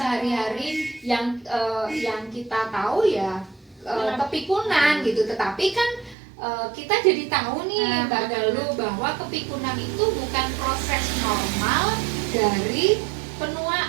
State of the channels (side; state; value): left; drops out; at 6.2 s